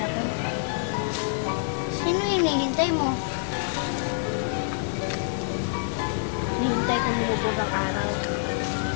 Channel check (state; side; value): silent; right; 61 dB below the other